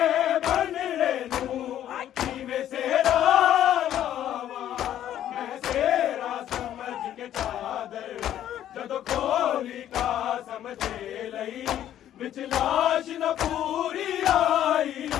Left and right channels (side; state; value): right; quieter; 11.4 dB